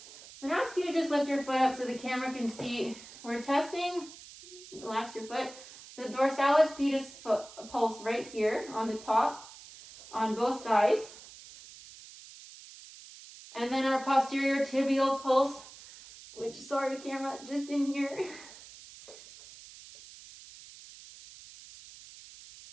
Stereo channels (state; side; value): noise; right; hiss, 18 dB below the sound